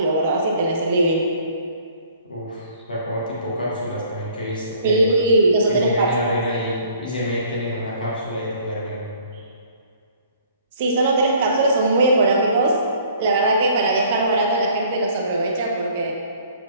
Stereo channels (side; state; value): both; inverted; correlation -0.57